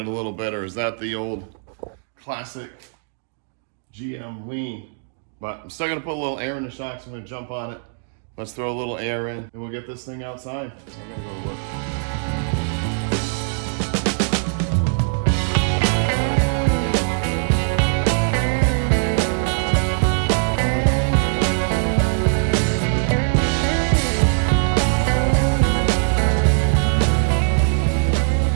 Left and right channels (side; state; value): left; silent; digital silence